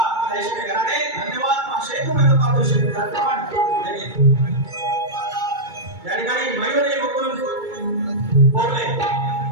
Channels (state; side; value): late; left; 2.3 ms